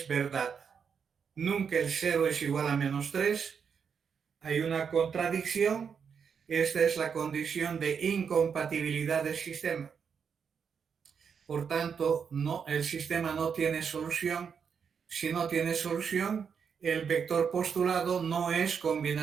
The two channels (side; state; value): left; quieter; 6.7 dB